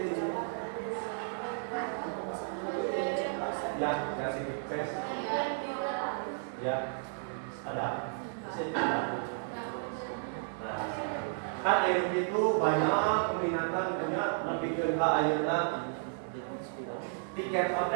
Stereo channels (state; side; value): silent; left; digital silence